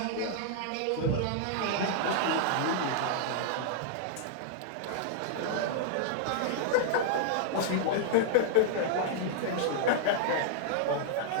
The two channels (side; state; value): both; different; correlation -0.01